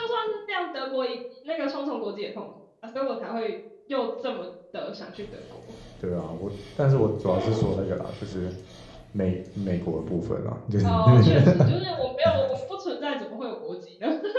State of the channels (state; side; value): identical; both; correlation 1.00